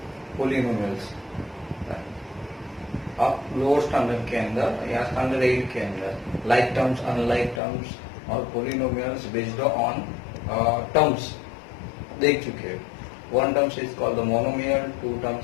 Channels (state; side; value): drops out; right; at 7.6 s